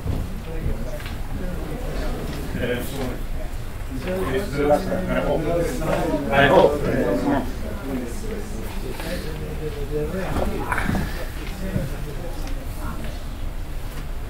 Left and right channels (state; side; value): identical; both; correlation 1.00